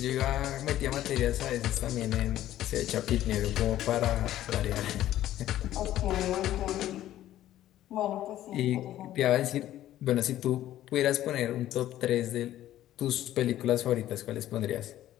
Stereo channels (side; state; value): right; quieter; 13.2 dB